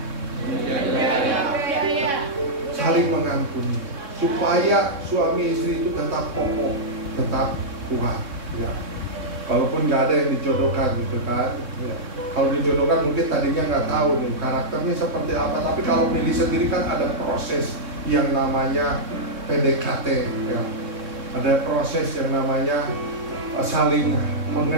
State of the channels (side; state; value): left; late; 3.6 ms